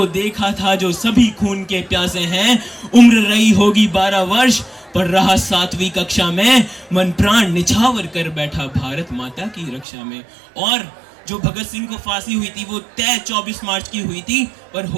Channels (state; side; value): drops out; left; at 9.9 s